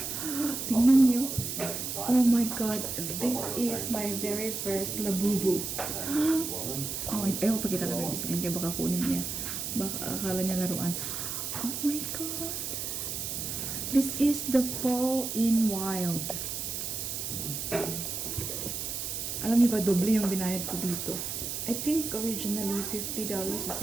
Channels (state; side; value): noise; right; hiss, 4 dB below the sound